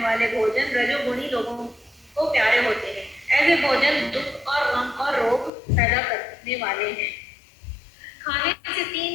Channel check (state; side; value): drops out; right; at 5.5 s